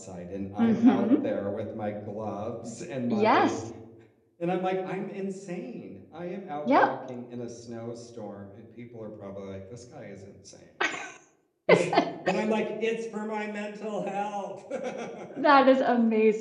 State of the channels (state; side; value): identical; both; correlation 1.00